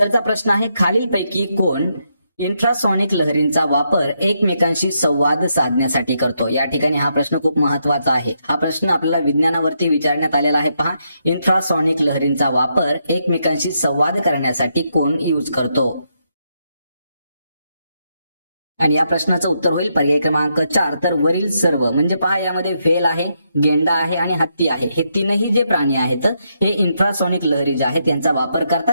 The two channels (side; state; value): both; inverted; correlation -0.80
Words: प्रश्न आहे, खालीलपैकी कोण इंट्रासॉनिक लहरींचा वापर एकमेकांशी संवाद साधण्यासाठी करतो. या ठिकाणी हा प्रश्न खूप महत्वाचा आहे. हा प्रश्न आपल्याला विज्ञानावरती विचारण्यात आलेला आहे पहा. इंट्रासॉनिक लहरींचा वापर एकमेकांशी संवाद करण्यासाठी कोण यूज करतो. आणि या प्रश्नाचं उत्तर होईल पर्याय क्रमांक 4. तर वरील सर्व म्हणजे पहा, यामध्ये व्हेल आहे, गेंडा आहे आणि हत्ती आहे. हे तीनही जे प्राणी आहेत हे इंट्रासॉनिक लहरी जे आहेत त्यांचा वापर